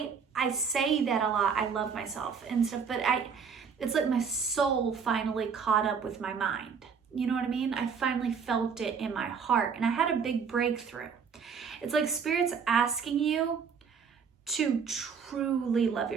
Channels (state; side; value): quieter; left; 6.2 dB